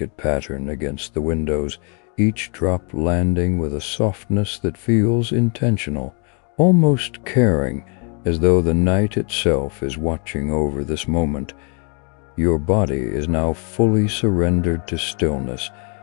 pattern against the windows, each drop landing with a softness that feels intentional, almost caring, as though the night itself is watching over this moment. Your body is now fully surrendered to stillness.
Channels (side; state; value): right; quieter; 35.6 dB